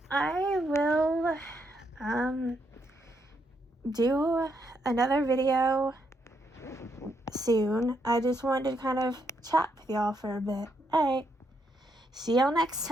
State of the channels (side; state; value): both; normal; correlation 0.77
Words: I will do another video soon. I just wanted to kind of chat with y'all for a bit. Alright. See y'all next